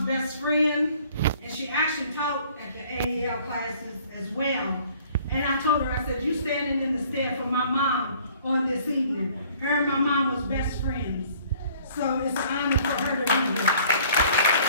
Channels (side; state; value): both; inverted; correlation -0.55